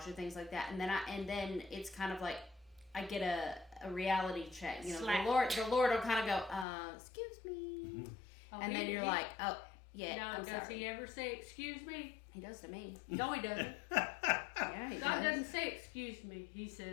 or things like that, and then it's kind of like I get a reality check. You know, Slap. the Lord will kind of go, "Excuse me," Oh, and then you're like, "Oh, yeah." No, I'm does sorry. he ever say excuse me? He does to me. No, he doesn't. Yeah, he God does. doesn't say excuse me. He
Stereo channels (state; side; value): drops out; right; at 6.7 s